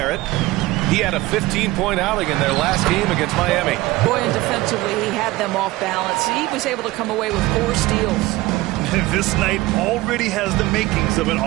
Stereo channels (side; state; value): left; quieter; 18.9 dB